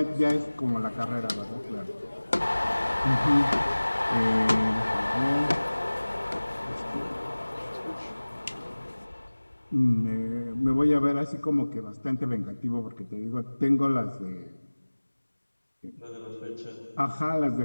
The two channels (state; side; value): inverted; both; correlation -1.00